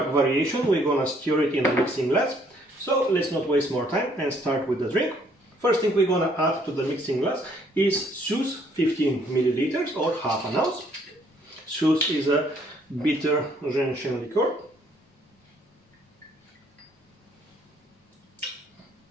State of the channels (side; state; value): both; normal; correlation 0.65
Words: variation, we're gonna stir it in a mixing glass. So let's not waste more time and start with the drink. First thing we're gonna add to the mixing glass is Suze 15 milliliters or half an ounce. Suze is a bitter gentian liqueur.